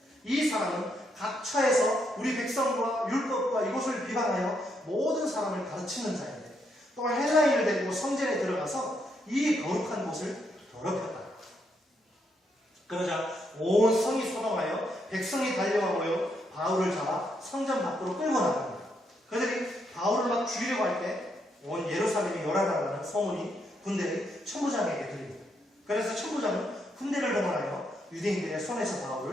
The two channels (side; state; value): both; normal; correlation 0.77